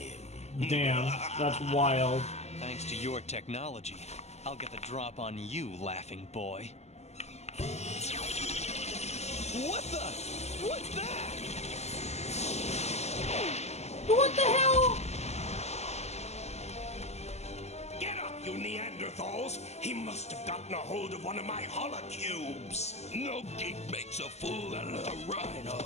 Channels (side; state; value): right; late; 0.32 ms